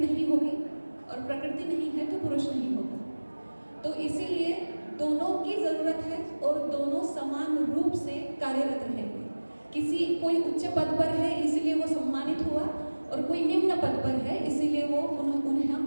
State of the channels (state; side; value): inverted; both; correlation -1.00